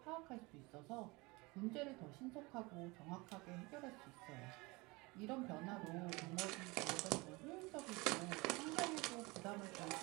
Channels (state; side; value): quieter; left; 24.7 dB